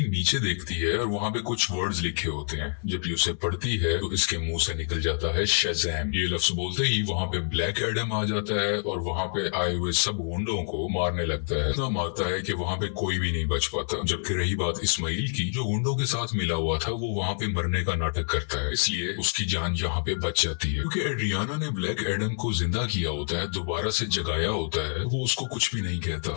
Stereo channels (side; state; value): right; silent; digital silence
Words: नीचे देखती है और वहाँ पे कुछ वर्ड्स लिखे होते हैं। जब ये उसे पढ़ती है तो इसके मुंह से निकल जाता है शज़ाम। ये लफ्ज बोलते ही वहाँ पे ब्लैक एडम आ जाता है और वहाँ पे आए हुए सब गुंडों को मारने लगता है। इतना मारता है कि वहाँ पे कोई भी नहीं बच पाता। जबकि रही बात इस्माइल की, जो गुंडों के साथ मिला हुआ था, वो वहाँ पे मरने का नाटक करता है, इसलिए उसकी जान यहाँ पे बच जाती है। क्योंकि एड्रियाना ने ब्लैक एडम को जिंदा किया होता है, दोबारा से जगाया होता है, वो उसको कुछ भी नहीं कहता।